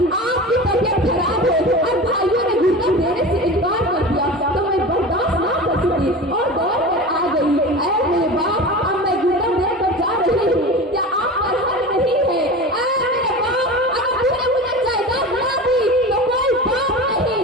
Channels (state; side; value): normal; both; correlation 0.31